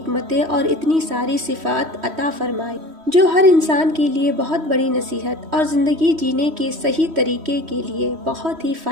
اور اتنی ساری صفات عطا فرمائی جو ہر انسان کے لیے بہت بڑی نصیحت اور زندگی جینے کے صحیح طریقے کے لیے بہت ہی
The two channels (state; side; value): late; left; 3.1 ms